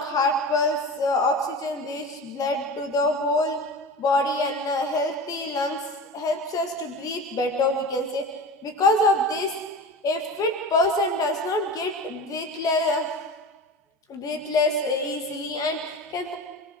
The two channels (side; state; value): both; normal; correlation 0.31